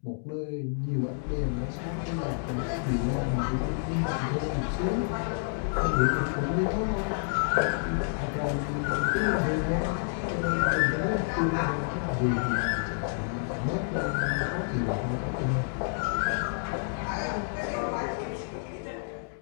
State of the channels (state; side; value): silent; right; digital silence